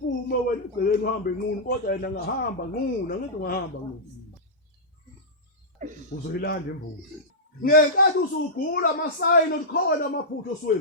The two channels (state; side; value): normal; both; correlation -0.12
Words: wena egcekeni uhambe nqunu kodwa yena ngahamba nqunu ngithi ungahamba nqunu uzoyilanda imbuzi ngenkathi usugula amasayini okhona amaphutho